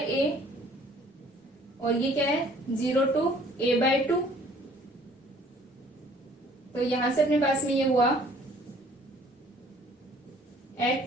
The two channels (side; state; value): both; normal; correlation 0.56